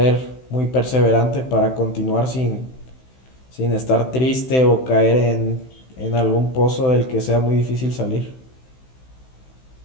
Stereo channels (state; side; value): late; right; 16 ms